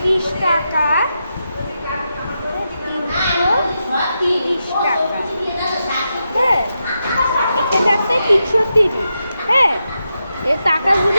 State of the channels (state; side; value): inverted; both; correlation -0.87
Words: টাকা। 330 টাকা। হ্যাঁ, এখানে আছে 330। হ্যাঁ, এই